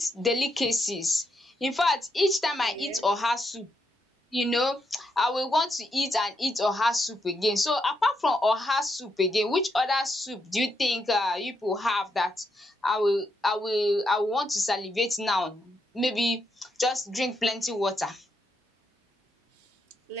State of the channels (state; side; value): normal; both; correlation 0.80